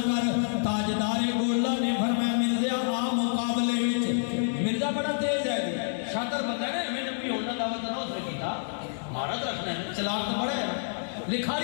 چلاک تو بڑا ہے،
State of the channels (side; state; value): right; silent; 58 dB below the other